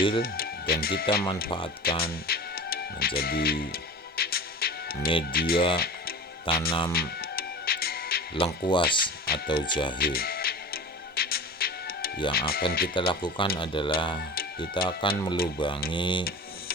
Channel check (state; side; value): normal; both; correlation 0.35